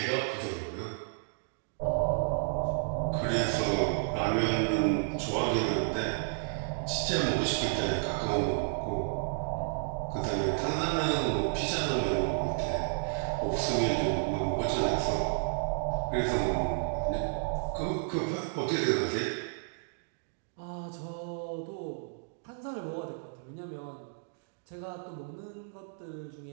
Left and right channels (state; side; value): silent; left; digital silence